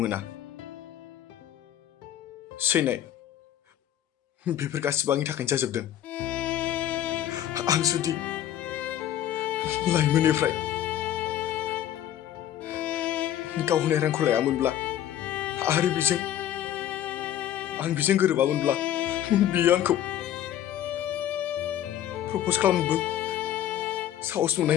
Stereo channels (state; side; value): quieter; right; 11.4 dB